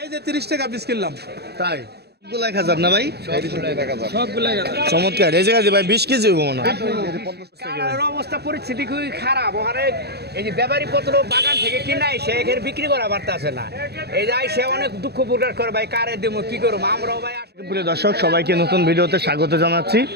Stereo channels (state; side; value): late; left; 0.48 ms